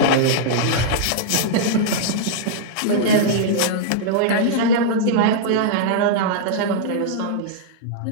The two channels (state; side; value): different; both; correlation -0.02